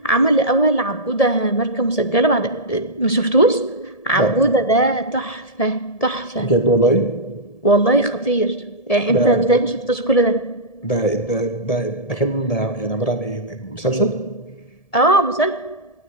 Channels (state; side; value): late; right; 1.7 ms